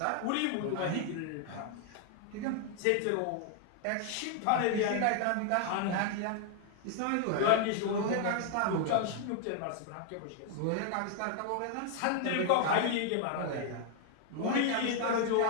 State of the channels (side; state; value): both; different; correlation 0.00